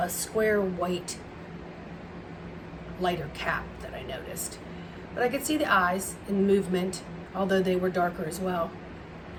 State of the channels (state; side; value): identical; both; correlation 1.00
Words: square white lighter cap that I noticed. But I could see the eyes in movement, although they were darker as well.